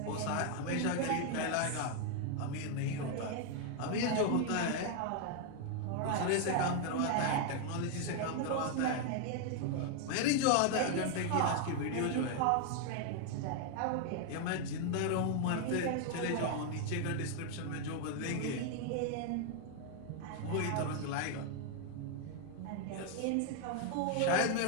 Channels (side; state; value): both; different; correlation 0.00